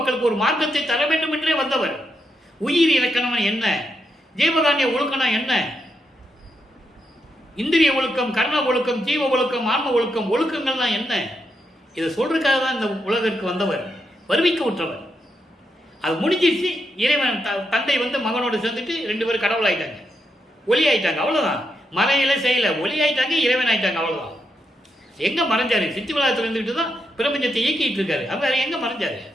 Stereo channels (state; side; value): normal; both; correlation 0.82